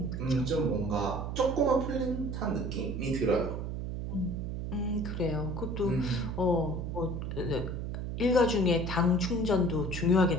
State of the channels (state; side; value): noise; right; hum, 4 dB below the sound